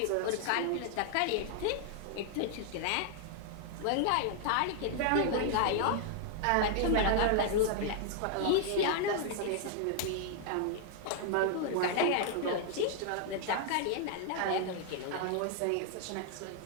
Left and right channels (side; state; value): both; different; correlation 0.00